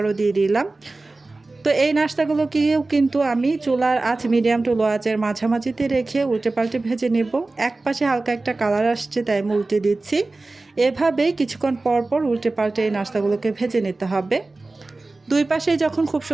দিয়ে দিলাম। তো এই নাস্তাগুলোকেও কিন্তু আমি চুলার আঁচ মিডিয়াম টু লো আঁচের মাঝামাঝিতে রেখে উল্টে পাল্টে ভেজে নেব। এক পাশে হালকা একটা কালার আসছে তাই আমি উল্টে দিচ্ছি। এভাবেই কিছুক্ষণ পর পর উল্টে পাল্টে এই নাস্তাগুলোকে ভেজে নিতে হবে। দুই পাশেই যখন খুব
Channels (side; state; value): left; quieter; 3.3 dB